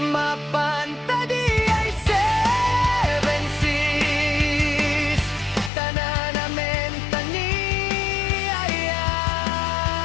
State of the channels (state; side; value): drops out; right; at 5.7 s